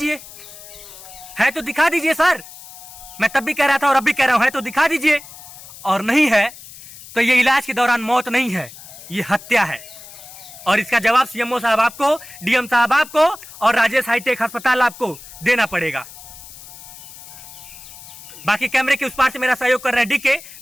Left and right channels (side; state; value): left; noise; hiss, 17 dB below the sound